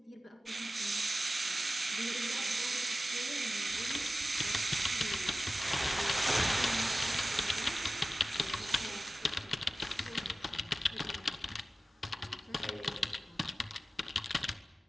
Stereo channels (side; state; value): both; normal; correlation 0.95